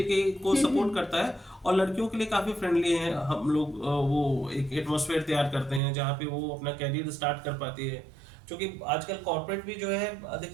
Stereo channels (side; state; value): left; drops out; at 5.8 s